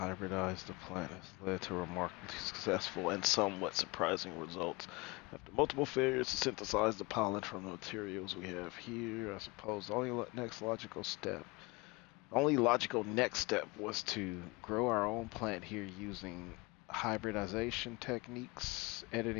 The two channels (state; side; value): quieter; right; 25.4 dB